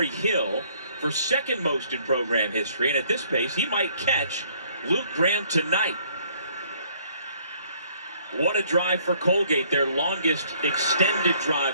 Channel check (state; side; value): inverted; both; correlation -0.62